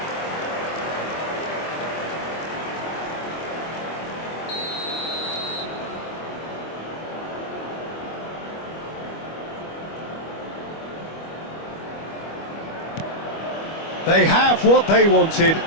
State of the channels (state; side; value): late; right; 25 ms